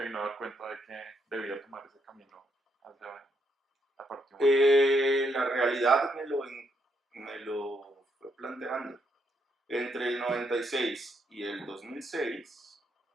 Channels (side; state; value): both; normal; correlation 0.75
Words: vino a dar cuenta de que debía tomar ese camino hacia la parte humana? La realidad me lo fue planteando. Entre el 96 y el 2006